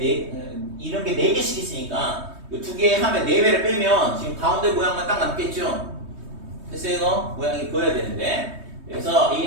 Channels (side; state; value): left; late; 3.2 ms